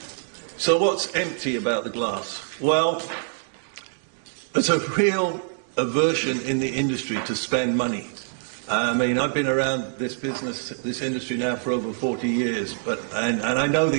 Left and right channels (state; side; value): silent; left; digital silence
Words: So what's empty about the glass? Well, there's a real aversion in the industry to spend money. I mean, I've been around this industry now for over 40 years, and I know